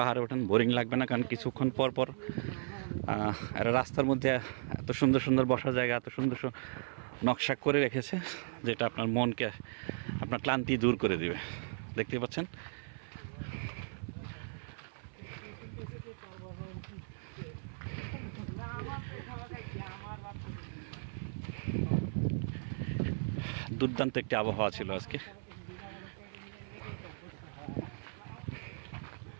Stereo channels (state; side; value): silent; left; 54 dB below the other